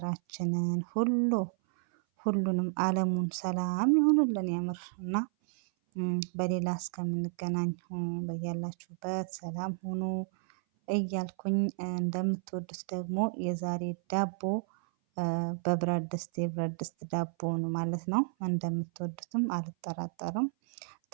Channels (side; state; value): left; silent; 57 dB below the other